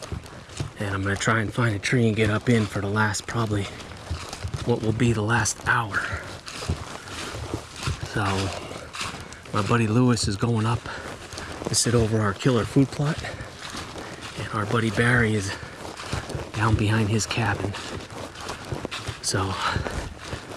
and I'm gonna try and find a tree and get up in for the last, probably what will be the last hour. So my buddy Lewis is going up to sit over our killer food plot, and our buddy Barry is down behind his cabin. So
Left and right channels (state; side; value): identical; both; correlation 1.00